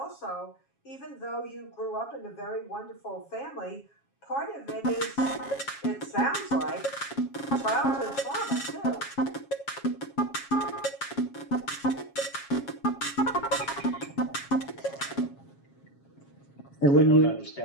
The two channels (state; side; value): late; right; 7.3 ms